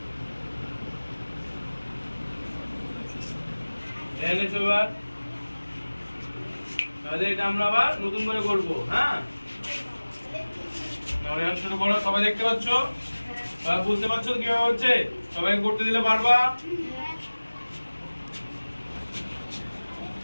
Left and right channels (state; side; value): inverted; both; correlation -1.00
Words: তাহলে এটা আমরা আবার নতুন করে করব। হ্যাঁ, শুরু করো। সবাই দেখতে পাচ্ছ? বুঝতে পারছো কিভাবে হচ্ছে? সবাই করতে দিলে পারবা?